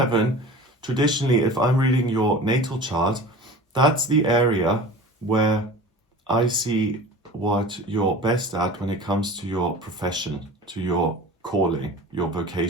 traditionally, if I'm reading your natal chart, that's the area where I see what you're best at when it comes to your profession, to your calling, your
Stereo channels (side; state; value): both; normal; correlation 0.38